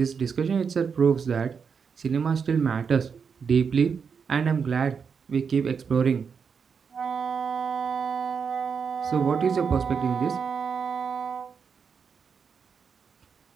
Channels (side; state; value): left; quieter; 6.2 dB